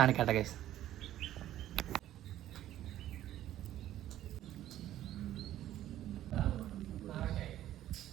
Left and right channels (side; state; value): left; quieter; 12.9 dB